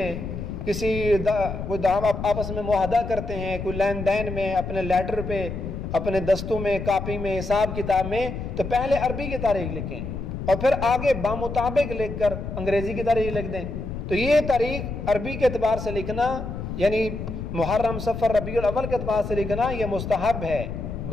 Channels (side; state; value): left; noise; rumble, 6 dB below the sound